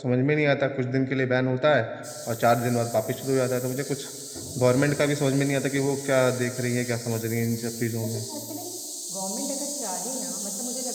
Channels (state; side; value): identical; both; correlation 1.00